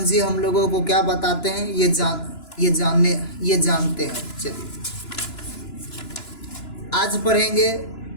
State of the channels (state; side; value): late; right; 2.9 ms